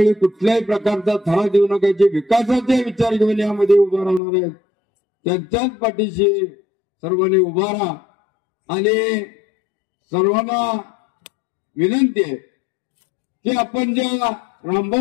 कुठल्याही प्रकारचा थरा देऊ नका. जे विकासाचे विचार घेऊन यामध्ये उभा राहणार आहेत त्यांच्याच पाठीशी सर्वांनी उभा राहा. आणि सर्वांना विनंती आहे की आपण ज्या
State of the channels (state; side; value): drops out; right; at 4.2 s